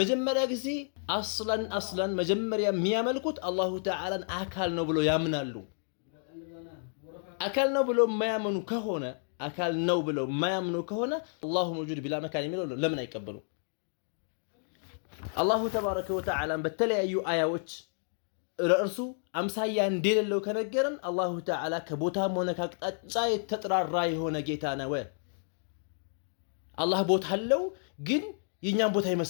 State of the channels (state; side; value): silent; right; 57 dB below the other